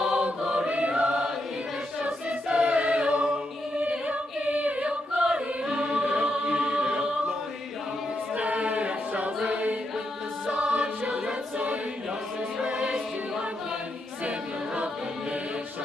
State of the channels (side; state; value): both; normal; correlation 0.82